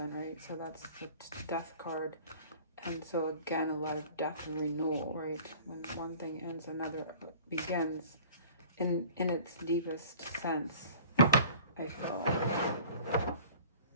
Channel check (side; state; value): both; inverted; correlation -0.47